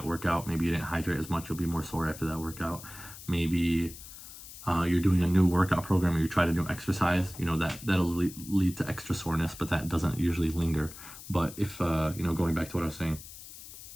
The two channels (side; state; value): left; noise; hiss, 15 dB below the sound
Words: workout. Maybe you didn't hydrate as much. You'll be more sore after that workout. Maybe you're doing a new workout program or you try to do exercise. That'll lead to extra soreness, but that doesn't usually linger. But if, going back to what I was saying,